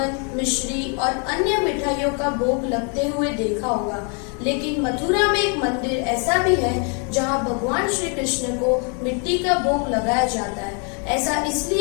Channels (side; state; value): right; quieter; 38.2 dB